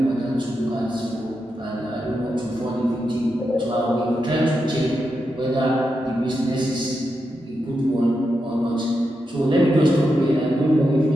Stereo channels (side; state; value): both; normal; correlation 0.86